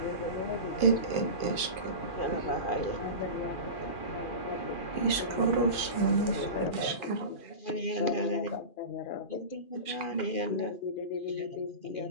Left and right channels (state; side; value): late; right; 2.4 ms